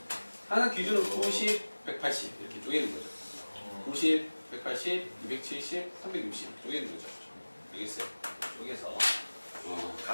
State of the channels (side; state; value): both; inverted; correlation -1.00